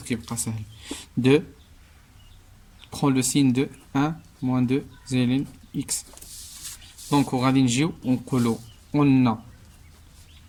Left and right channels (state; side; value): identical; both; correlation 1.00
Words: كيبقى سهل de prend le signe de 1 moins 2 زائد x. دونك وغادي نجيو ونقولو قلنا